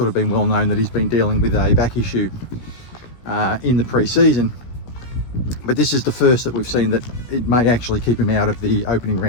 of been well known that he's been dealing with a back issue in the pre-season, but this is the first that we've seen that it may actually keep him out of the opening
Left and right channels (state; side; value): late; right; 16 ms